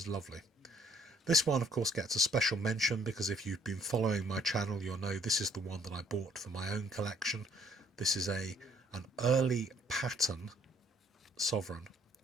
lovely. This one of course gets a special mention because if you've been following my channel you'll know this is the one that I bought for my own collection. This is an early pattern sovereign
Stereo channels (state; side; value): normal; both; correlation 0.62